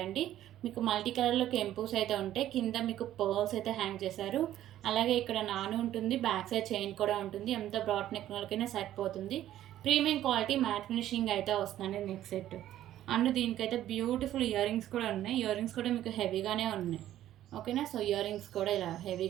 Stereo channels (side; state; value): left; quieter; 12.7 dB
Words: మీకు మల్టీ కలర్లో కెంపూస్ అయితే ఉంటాయి. కింద మీకు పర్ల్స్ అయితే హ్యాంగ్ చేశారు. అలాగే ఇక్కడ నాను ఉంటుంది, బ్యాక్ సైడ్ చైన్ కూడా ఉంటుంది. ఎంత బ్రాడ్ నెక్ వాళ్ళకైనా సరిపోతుంది. ప్రీమియం క్వాలిటీ మ్యాట్ ఫినిషింగ్ అయితే వస్తుందండి నెక్ సెట్. అండ్ దీనికైతే బ్యూటిఫుల్ ఇయర్ రింగ్స్ కూడా ఉన్నాయి. ఇయర్ రింగ్స్ కూడా మీకు హెవీగానే ఉన్నాయి. ఓకేనా, సో ఇయర్ రింగ్స్ కూడా ఇలా